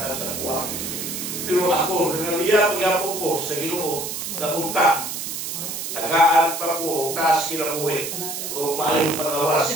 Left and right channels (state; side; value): noise; right; hiss, 5 dB below the sound